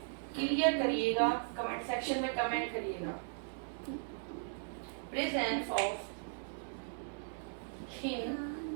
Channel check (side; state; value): left; silent; digital silence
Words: क्लियर करिएगा, कमेंट सेक्शन में कमेंट करिएगा। Presence of thin